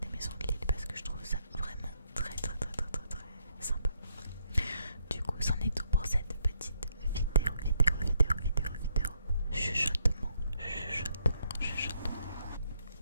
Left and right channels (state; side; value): inverted; both; correlation -0.74